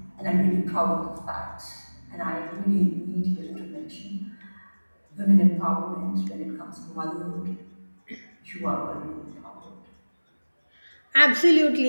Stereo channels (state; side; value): inverted; both; correlation -1.00